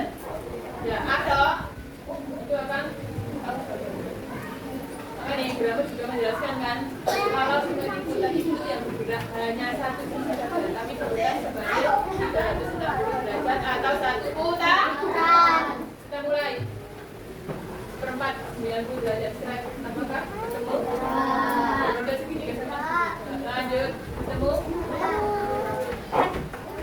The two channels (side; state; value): both; identical; correlation 1.00